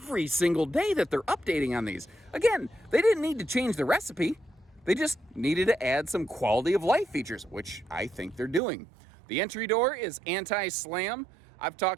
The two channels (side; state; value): left; drops out; at 8.6 s